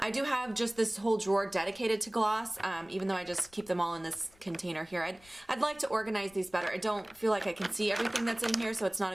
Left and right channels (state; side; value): noise; left; rumble, 27 dB below the sound